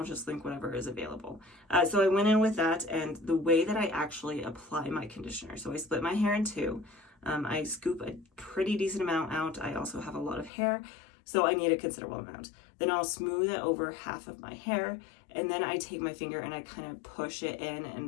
just link whatever is available. So I went in with that, and the way that I actually apply my conditioner. So I split my hair in two. I scoop a pretty decent amount out. I also have a lot of hair, so I need a considerable amount. Then I'll smooth it over half of my hair, and then I take my finger and I kind of push it in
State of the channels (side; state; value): right; drops out; at 10.5 s